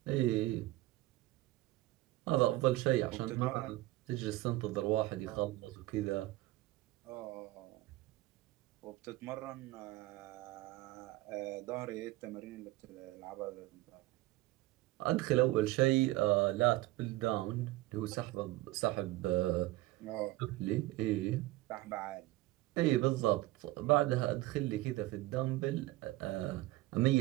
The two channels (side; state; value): left; quieter; 17.9 dB